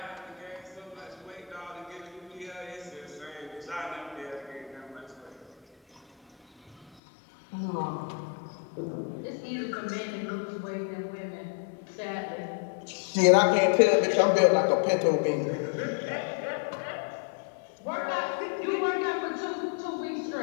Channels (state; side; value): drops out; right; at 6.9 s